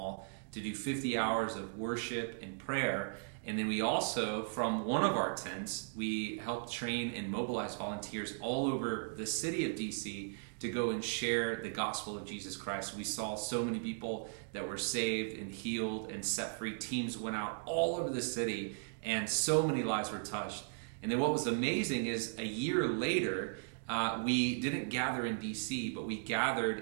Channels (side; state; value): left; silent; digital silence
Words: to do 50 hours of worship and prayer. And then we also, from one of our tents, we helped train and mobilize volunteers all over the city of DC to go and share the gospel of Jesus Christ. We saw so many people that were saved and healed and set free. Teams went out all over the city, and so many lives were touched. And then what was amazing is a year later, we didn't gather in DC, but we